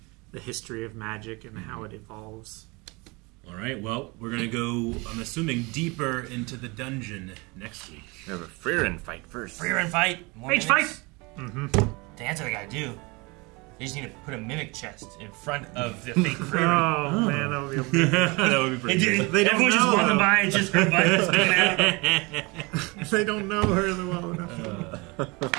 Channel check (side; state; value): left; quieter; 26.6 dB